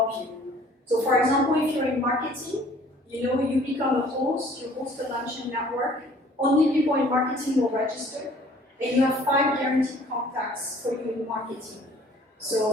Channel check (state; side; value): normal; both; correlation 0.55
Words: you. So for example, if you're in marketing, you become a host, you host a lunch and network, only people in marketing will register, and you have 5 guaranteed contacts for you in marketing.